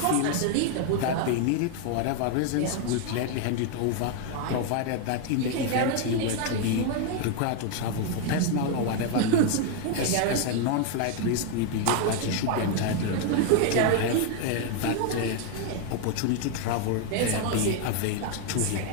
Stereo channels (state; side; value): different; both; correlation 0.01